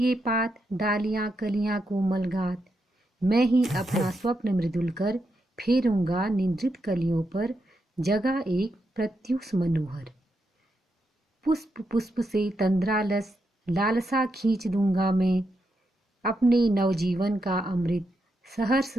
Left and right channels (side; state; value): both; normal; correlation 0.83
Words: पात, डालियां कलियां कोमल गात, मैं ही अपना स्वप्न मृदुल कर फेरूंगा निंद्रित कलियों पर, जगह एक प्रत्युष मनोहर। पुष्प पुष्प से तंद्रालस लालसा खींच दूंगा मैं, अपने नवजीवन का अमृत सहर्ष